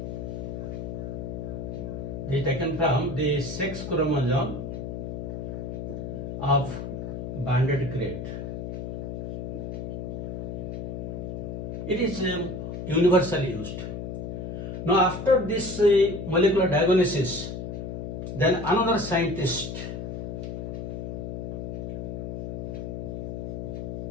They are taken from the sex chromosome of banded crate. It is universally used. Now after this molecular diagnosis, then another scientist,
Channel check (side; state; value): left; noise; hum, 5 dB below the sound